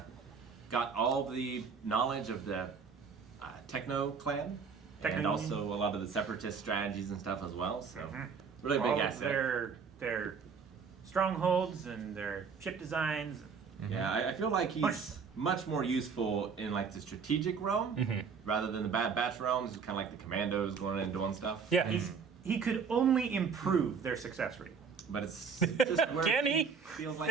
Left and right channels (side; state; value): left; quieter; 5.9 dB